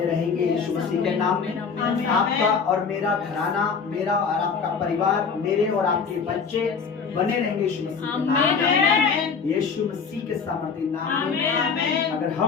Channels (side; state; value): right; quieter; 5.7 dB